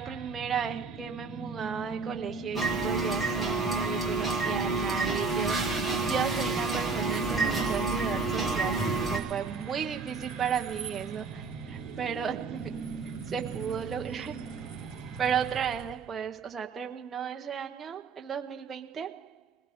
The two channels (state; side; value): quieter; left; 4.7 dB